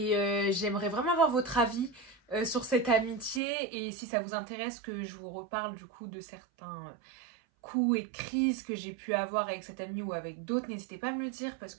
j'aimerais vraiment avoir votre avis sur cette amitié, et si ça vous intéresse que je vous reparle du coup de certains coups et crises que j'ai pu avoir avec cette amie ou avec d'autres, n'hésitez pas à me le dire parce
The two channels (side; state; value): left; drops out; at 3.4 s